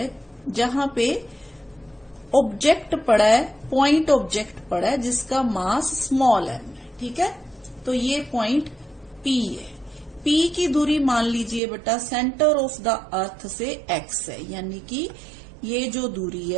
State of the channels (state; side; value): drops out; left; at 11.6 s